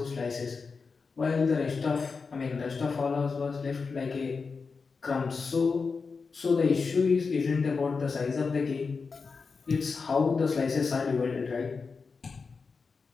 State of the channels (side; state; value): right; quieter; 4.8 dB